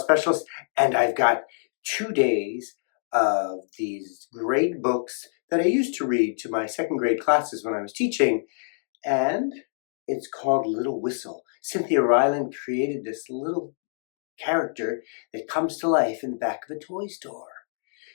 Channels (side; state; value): right; silent; digital silence